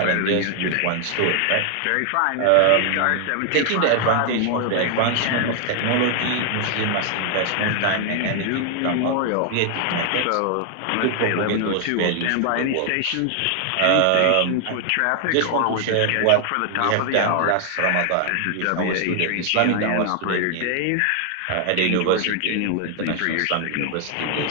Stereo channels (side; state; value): both; different; correlation 0.00